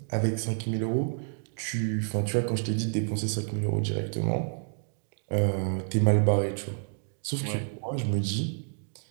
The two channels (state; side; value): silent; left; 58 dB below the other